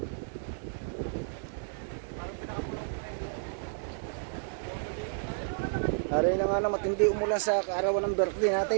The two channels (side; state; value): left; silent; 57 dB below the other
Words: Hari na nga na matindi umulan sa kaarawan ng birthday